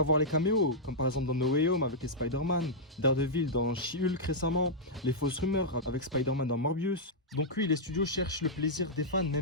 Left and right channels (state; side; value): normal; both; correlation -0.08